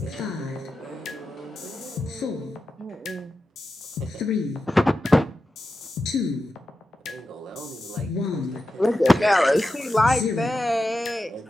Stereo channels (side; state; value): both; normal; correlation 0.91